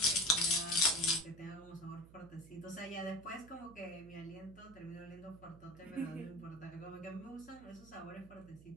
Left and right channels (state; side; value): noise; right; hum, 19 dB below the sound